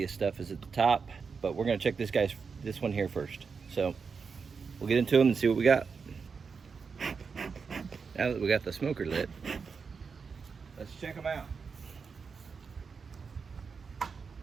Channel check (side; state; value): left; quieter; 5.4 dB